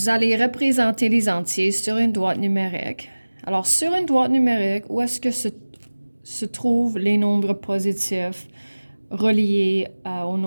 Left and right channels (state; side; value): inverted; both; correlation -1.00